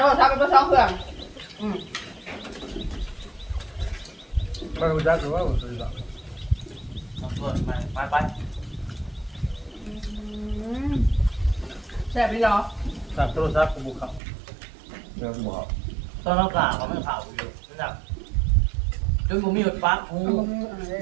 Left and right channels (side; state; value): left; drops out; at 14.2 s